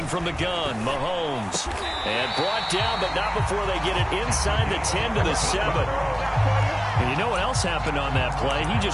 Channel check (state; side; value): identical; both; correlation 1.00